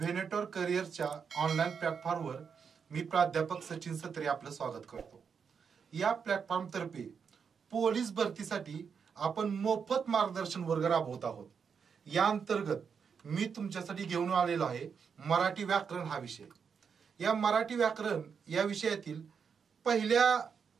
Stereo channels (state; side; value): quieter; left; 6.4 dB